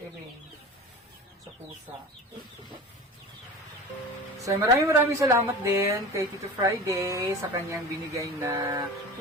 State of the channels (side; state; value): both; normal; correlation 0.35